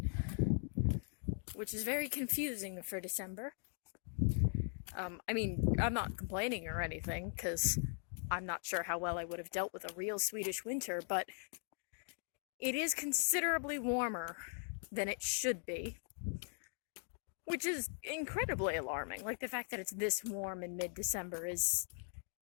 which is very confusing for December. I'm not complaining or anything because I'm not sure how well I would have dealt with a real Swedish winter, but it is considerably warmer than it should be, which is incredibly alarming. Like, the fact that it's this warm in mid-December is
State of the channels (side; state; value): right; silent; 51 dB below the other